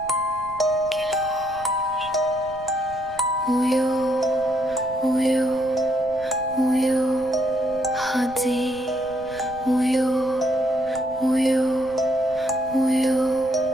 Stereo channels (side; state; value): right; noise; rumble, 20 dB below the sound